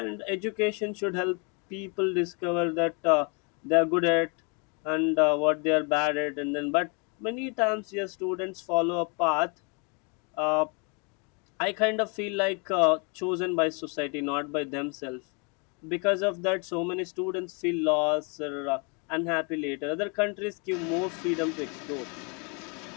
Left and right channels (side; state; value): right; quieter; 34.2 dB